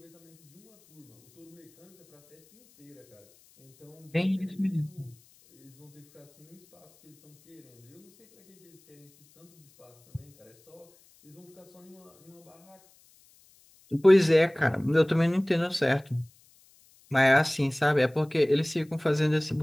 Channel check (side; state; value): left; noise; hiss, 30 dB below the sound